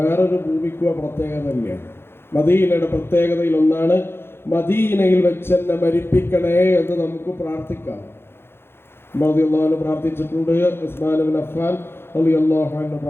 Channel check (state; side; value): late; right; 0.11 ms